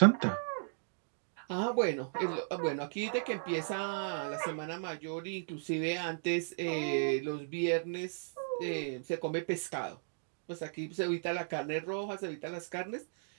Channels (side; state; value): left; silent; digital silence